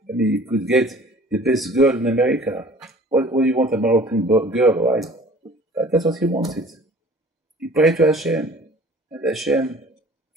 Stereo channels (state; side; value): normal; both; correlation 0.49